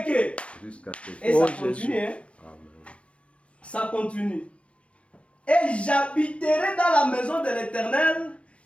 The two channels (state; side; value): late; right; 0.061 ms